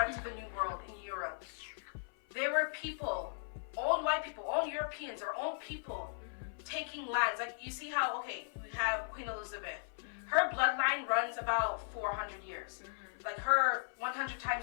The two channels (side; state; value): right; silent; 53 dB below the other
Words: to the New World in Europe, there were people, own white people, own Europeans, or own people taking lands. Like, you see how, okay, we have Queen Elizabeth. Her bloodline runs about 400 years. Like, her 100